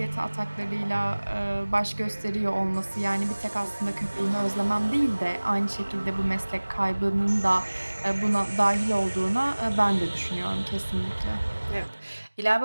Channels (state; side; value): inverted; both; correlation -1.00